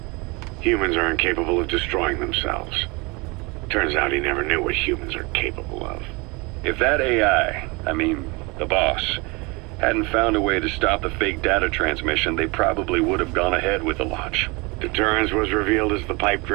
Humans are incapable of destroying themselves. Turns out he never knew what humans are capable of. If that AI, the boss, hadn't found a way to stop the fake data transmission, they probably would have gone ahead with the launch. Deterrence was revealed as the pipe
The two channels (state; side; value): quieter; left; 27.0 dB